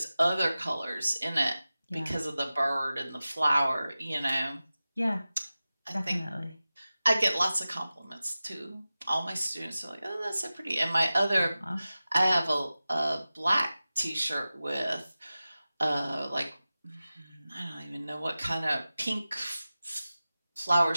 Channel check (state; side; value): inverted; both; correlation -0.96